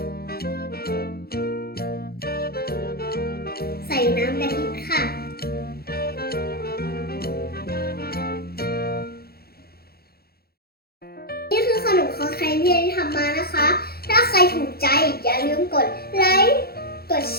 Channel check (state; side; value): late; right; 0.45 ms